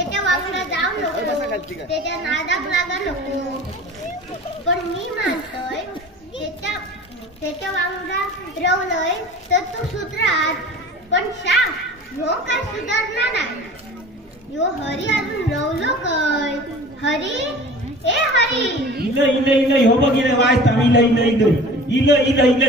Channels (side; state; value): both; normal; correlation 0.41